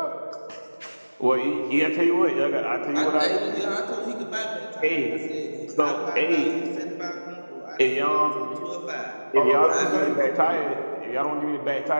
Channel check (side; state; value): both; inverted; correlation -1.00